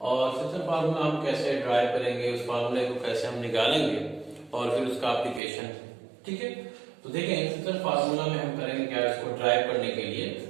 और सेक्शन फार्मूला हम कैसे ड्राइव करेंगे, उस फार्मूले को कैसे हम निकालेंगे और फिर उसका एप्लीकेशन। ठीक है, तो देखें सेक्शन फार्मूला में हम करेंगे क्या, इसको ड्राइव करने के लिए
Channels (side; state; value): left; drops out; at 5.4 s